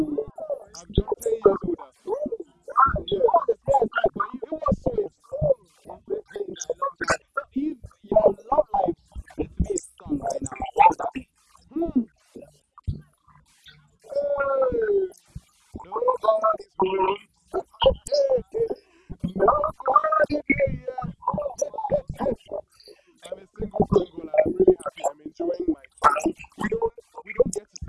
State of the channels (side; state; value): both; identical; correlation 1.00